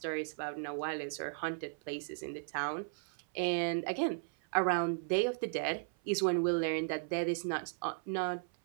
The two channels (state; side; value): silent; left; 54 dB below the other